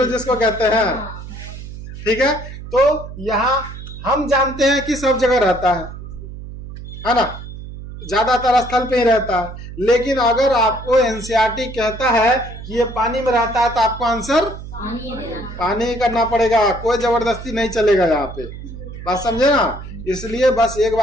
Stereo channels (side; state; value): right; noise; hum, 12 dB below the sound